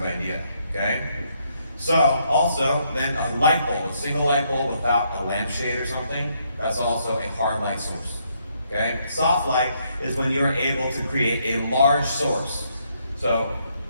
idea, okay? So also, then a light bulb, a single light bulb without a lampshade or something, that's also a hard light source, okay? Soft light is when you're able to create a large source. So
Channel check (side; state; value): both; inverted; correlation -0.73